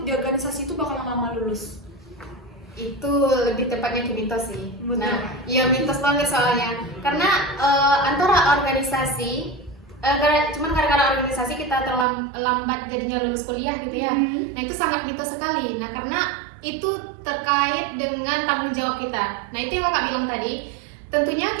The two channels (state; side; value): drops out; left; at 12.1 s